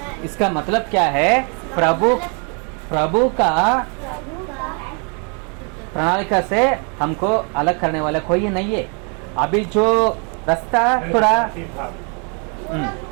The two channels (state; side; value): quieter; left; 36.7 dB